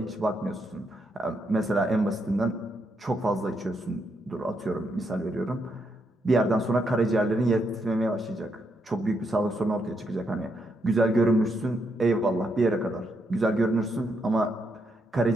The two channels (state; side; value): normal; both; correlation 0.79